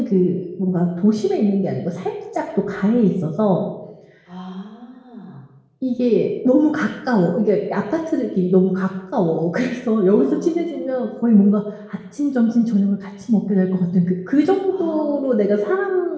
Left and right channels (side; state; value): both; identical; correlation 1.00